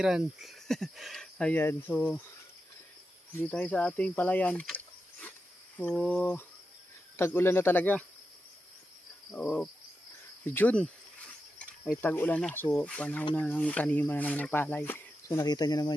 Ayan, so dito tayo sa ating palayan. So tag-ulan na talaga. June ay tag-ulan na, so panahon na ng taniman na naman ng palay. So nakita nyo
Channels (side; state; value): both; normal; correlation 0.89